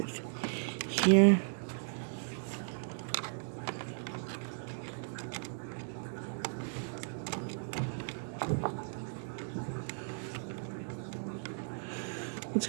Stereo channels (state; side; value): silent; left; digital silence